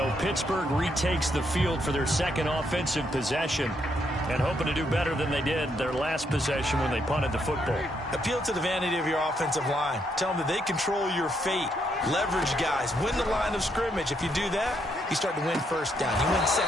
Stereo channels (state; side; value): normal; both; correlation 0.76